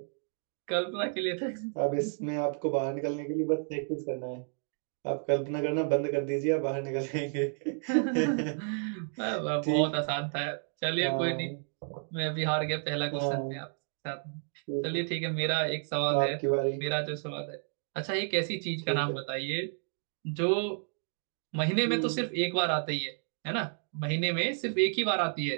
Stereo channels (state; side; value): silent; left; 57 dB below the other